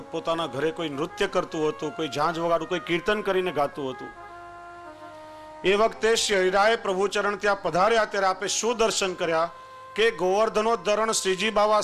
ઘરે કોઈ નૃત્ય કરતું હતું, કોઈ ઝાંઝ વગાડું, કોઈ કીર્તન કરીને ગાતું હતું. એ વખતે શ્રી હરિરાય પ્રભુચરણ ત્યાં પધાર્યા ત્યારે આપે શું દર્શન કર્યા કે ગોવર્ધનોદ્ધરણ શ્રીજી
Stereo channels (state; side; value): identical; both; correlation 1.00